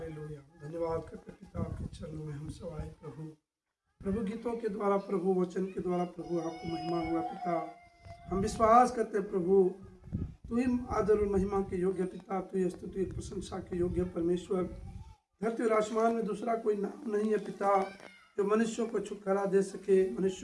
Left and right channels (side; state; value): both; identical; correlation 1.00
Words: धन्यवाद करते पिता आपके चरणों में हम सब आए प्रभु। प्रभु गीतों के द्वारा, प्रभु वचन के द्वारा प्रभु आपको महिमा हुआ पिता। हम विश्वास करते प्रभु, तू ही आदर और महिमा के योग्य पिता, तू ही स्तुति प्रशंसा के योग्य परमेश्वर। धरती और आसमान में दूसरा कोई नाम नहीं है पिता जो मनुष्यों को छुटकारा दे सके,